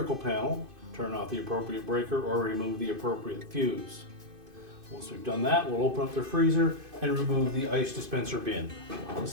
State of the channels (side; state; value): left; late; 2.5 ms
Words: panel, turn off the appropriate breaker, or remove the appropriate fuse. Once we've done that, we'll open up the freezer and remove the ice dispenser bin. So